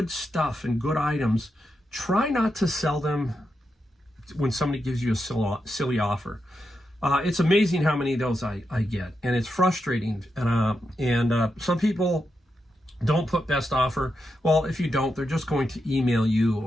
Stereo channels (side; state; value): both; normal; correlation 0.86